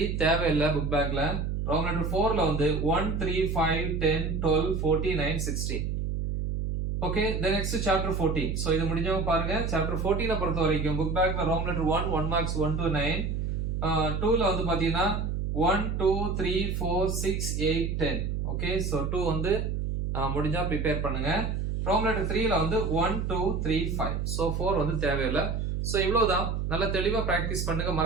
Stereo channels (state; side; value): noise; right; hum, 1 dB below the sound